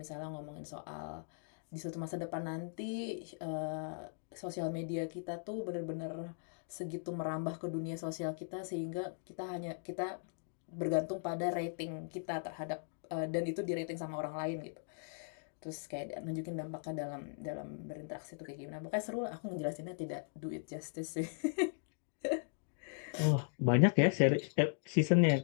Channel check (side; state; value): right; silent; digital silence